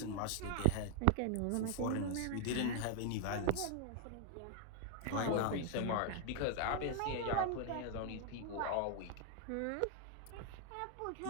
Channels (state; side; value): different; both; correlation 0.00